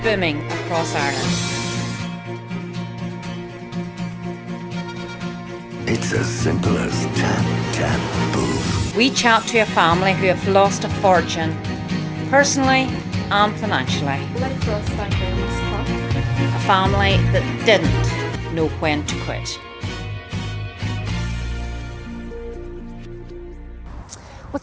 booming across Ireland. It's as simple as tap, tap, boom. We chat to a family who have lost a fortune, personally and financially. Life for us, thank you, was tough. A family that didn't know when to quit.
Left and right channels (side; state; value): both; identical; correlation 1.00